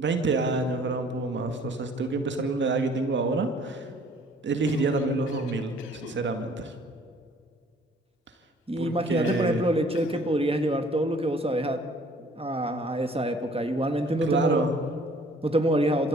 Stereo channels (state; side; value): normal; both; correlation 0.56